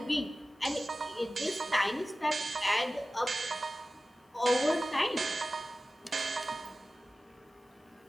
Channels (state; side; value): normal; both; correlation 0.96